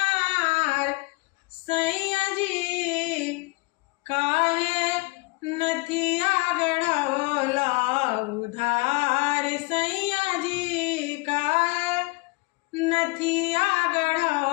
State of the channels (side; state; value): right; quieter; 25.9 dB